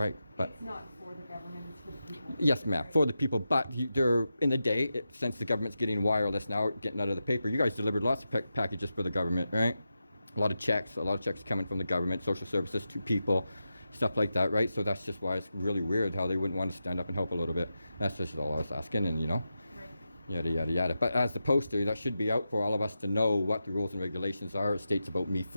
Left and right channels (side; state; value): both; inverted; correlation -0.90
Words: But It's not for the government. It's for the people. yes, ma'am, for the people. But they're in the day, since the government's getting wireless now, getting out of the paper. You guys delivered lots of packages for the government, right? A lot of checks coming from the government, social services to people, stuff like that, right? So that's just why it's really weird how they wouldn't want to stand up and help a little bit. That's just all I was asking, and Right. yada yada yada. But as the poster, that should be out for all of us to know what the rules and regulations are. It states about me